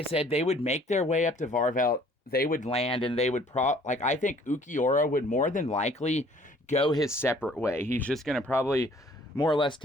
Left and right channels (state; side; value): normal; both; correlation 0.57